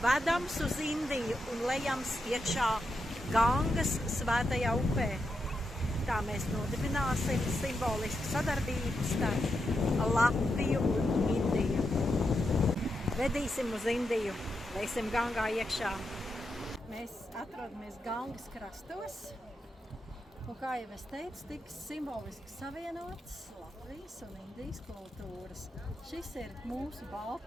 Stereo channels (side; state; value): both; normal; correlation 0.85